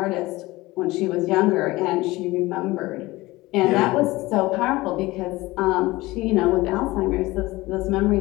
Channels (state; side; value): quieter; right; 19.9 dB